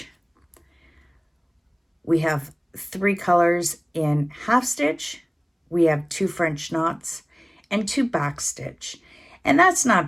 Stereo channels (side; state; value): both; identical; correlation 1.00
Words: We have 3 colors in half stitch, we have 2 French knots, and 2 backstitch. And that's